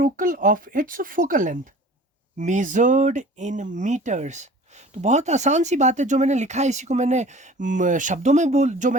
of its focal length measured in metres. तो बहुत आसान सी बात है, जो मैंने लिखा है इसी को मैंने शब्दों में जो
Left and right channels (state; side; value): normal; both; correlation 0.44